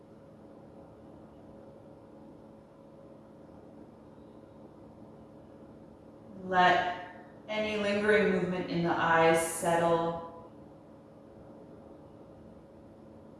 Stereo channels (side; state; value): both; identical; correlation 1.00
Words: Let any lingering movement in the eyes settle.